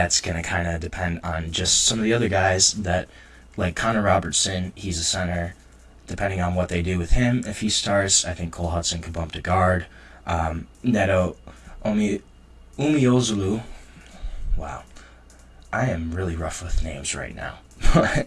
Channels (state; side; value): identical; both; correlation 1.00